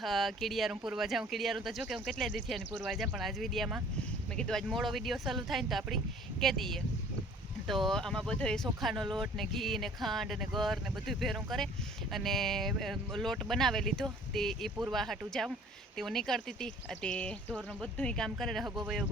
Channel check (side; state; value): both; normal; correlation 0.52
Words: कीड़ियारू पूरवा जाऊँ। कीड़ियारू तो जो कि हूँ केटले दी थी पूरवा जाऊँ पण आज विडियो में मैं कीधुं आज मोड़ो विडियो चालू थाय तो आपणी कही दीए। तो आमा बधो सोखानो लोट ने घी ने खांड ने गर ने बधुं भेरूं करे अने लोट बनावे लीधो ते ए पूरवा हाटू जाऊँ ते हूँ निकळती थी ते ढोरनुं बधुं काम करे हगो वयो